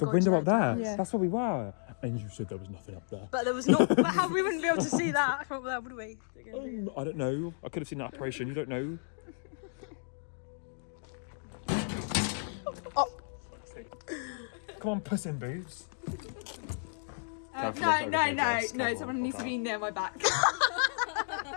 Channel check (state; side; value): silent; right; digital silence